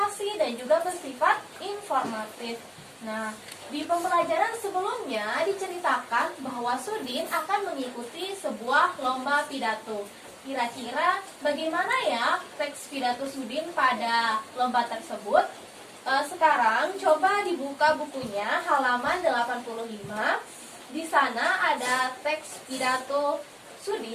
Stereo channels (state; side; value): identical; both; correlation 1.00